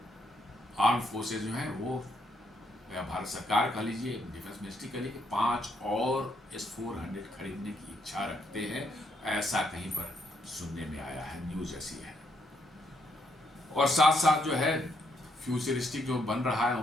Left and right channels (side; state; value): both; normal; correlation 0.75